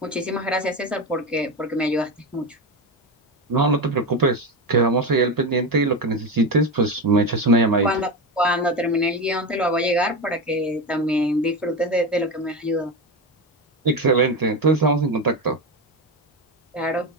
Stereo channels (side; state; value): both; normal; correlation 0.19